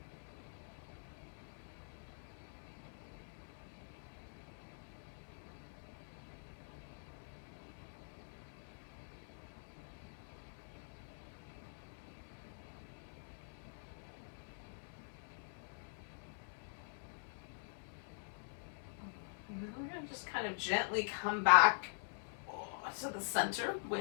We're going to just kind of gently come back to the center.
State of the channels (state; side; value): silent; right; digital silence